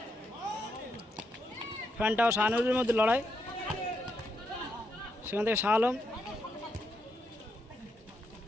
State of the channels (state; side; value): normal; both; correlation 0.80